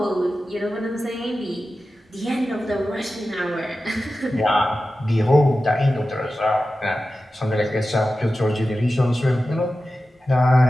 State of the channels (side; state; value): both; normal; correlation 0.94